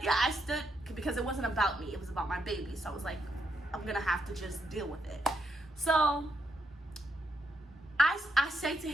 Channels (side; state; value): both; normal; correlation 0.80